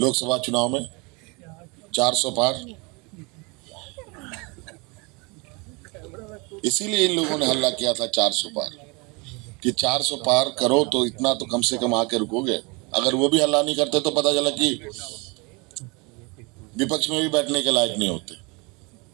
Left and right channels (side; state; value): left; quieter; 28.7 dB